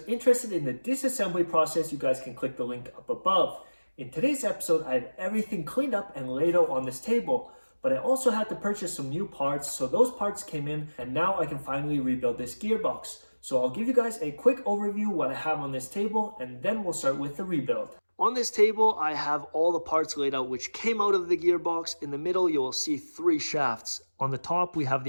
interested in the disassembly process, you guys can click the link up above. In today's episode, I have everything cleaned up and laid out on this table, but I also had to purchase some new parts, so those parts came in, and now I can finally rebuild this gearbox. So I'll give you guys a quick overview what I have on this table, and then we'll start with the rebuild. On this table, I have all the parts laid out which came out of the gearbox. In the middle, you will see 3 shafts. On the top, we have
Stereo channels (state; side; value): inverted; both; correlation -1.00